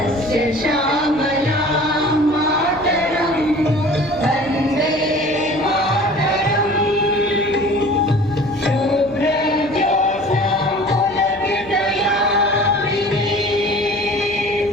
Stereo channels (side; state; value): left; noise; hum, 21 dB below the sound